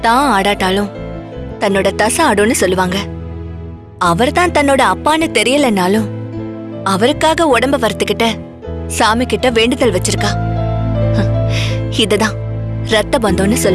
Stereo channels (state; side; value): identical; both; correlation 1.00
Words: தான் ஆடாட்டாலும் தன்னோட தசை ஆடும்னு சொல்லுவாங்க. அவர் தான் தன்னோட அப்பான்னு தெரியலனாலும் அவருக்காக உடம்ப வறுத்துக்கிட்ட சாமி கிட்ட வேண்டுதல் வச்சிருக்கா. இதுதான் ரத்த பந்தம்னு